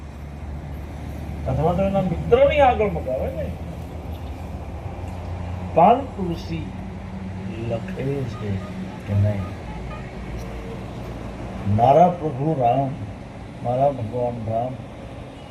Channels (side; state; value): both; identical; correlation 1.00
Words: અથવા તો એના મિત્રની આગળ મગાવે ને. પાન તુલસી લખે છે કે નહીં, મારા પ્રભુ રામ, મારા ભગવાન રામ